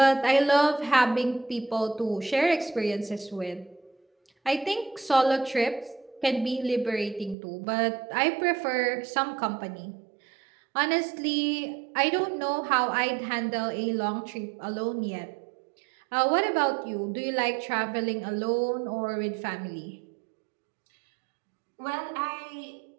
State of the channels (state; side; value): drops out; left; at 7.4 s